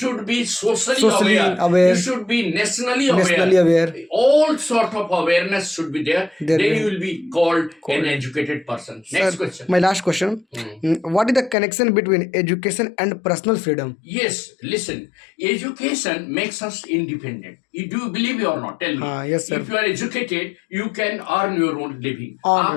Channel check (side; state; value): right; drops out; at 11.6 s